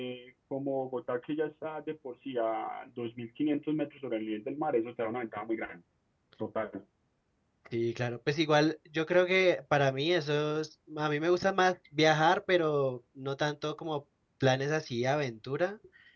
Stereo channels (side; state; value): both; identical; correlation 1.00